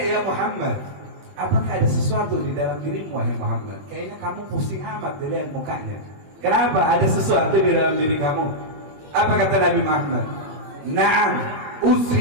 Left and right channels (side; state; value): left; late; 21 ms